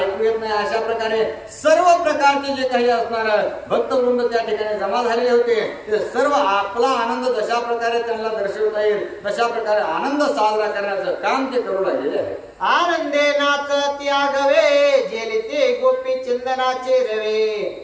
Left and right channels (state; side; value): identical; both; correlation 1.00